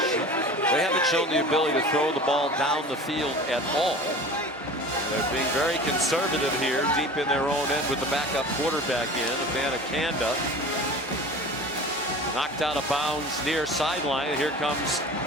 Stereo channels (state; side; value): normal; both; correlation 0.38